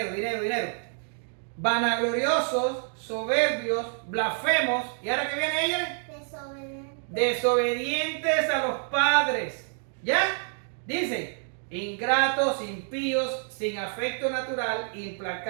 vanagloriosos, soberbios, blasfemos, y ahora que viene ella, desobedientes a los padres, ¿ya? Dice, ingratos, impíos, sin afecto natural,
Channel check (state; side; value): silent; left; 55 dB below the other